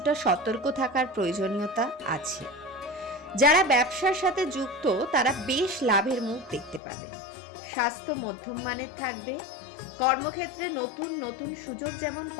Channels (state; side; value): drops out; right; at 6.8 s